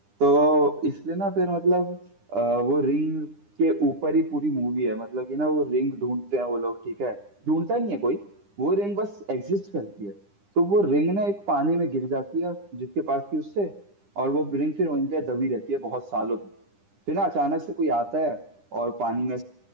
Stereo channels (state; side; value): late; left; 9.9 ms